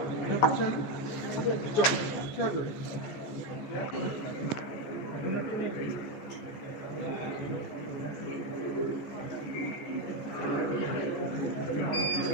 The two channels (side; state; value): right; late; 14 ms